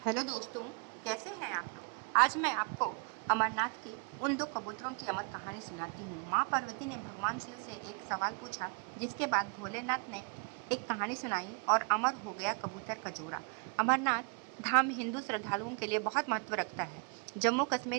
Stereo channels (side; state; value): left; quieter; 37.7 dB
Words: दोस्तों, कैसे हैं आप लोग। आज मैं आपको अमरनाथ की उन दो कबूतरों की अमर कहानी सुनाती हूँ। माँ पार्वती ने भगवान शिव से एक सवाल पूछा, जिसके बाद भोलेनाथ ने एक कहानी सुनाई और अमर हो गया कबूतर का जोड़ा। अमरनाथ धाम हिंदू श्रद्धालुओं के लिए बहुत महत्व रखता है। जम्मू